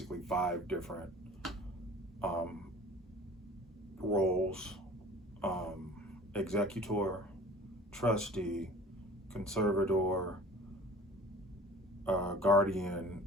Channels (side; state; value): both; normal; correlation 0.44